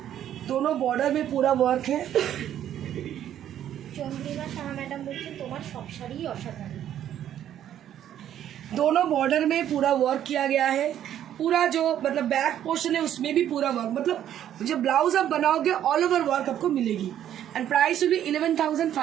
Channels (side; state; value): left; quieter; 10.8 dB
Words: दोनों बॉर्डर में पूरा वर्क है। চন্দ্রিমা সাহা ম্যাডাম বলছেন তোমার সব শাড়িই অসাধারণ। दोनों बॉर्डर में पूरा वर्क किया गया है, पूरा जो मतलब बैक पोर्शन है उसमें भी पूरा वर्क, मतलब जब ब्लाउज आप बनाओगे ऑल ओवर वर्क आपको मिलेगी। And price will be